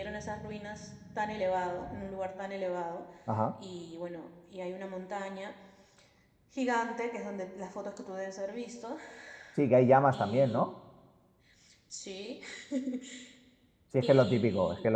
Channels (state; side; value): identical; both; correlation 1.00